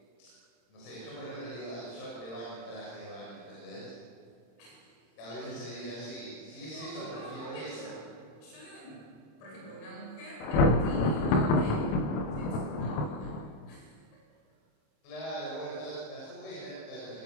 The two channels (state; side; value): late; right; 26 ms